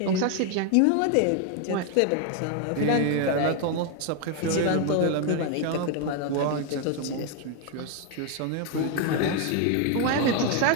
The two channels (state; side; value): different; both; correlation 0.01